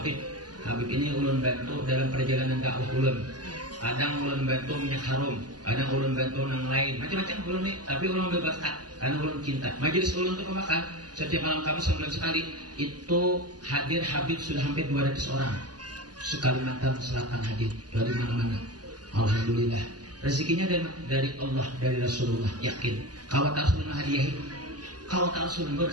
ini ulun bantu dalam perjalanan dakwah ulun. Kadang ulun bantu minyak harum, kadang ulun bantu nang lain, macam-macam ulun nih. Tapi ulun berberkat karena ulun cinta. Majelis ulun untuk pemakan setiap malam Kamis sebulan sekali itu hadir Habib sudah hampir 200 orang. Sekalimantan Selatan hadir dari mana-mana. Alhamdulillah. Rezekinya dari Allah, dari Rasulullah. Yakin. Kawat Rasulullah hadiahi. Kawat Rasulullah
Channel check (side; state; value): left; late; 0.69 ms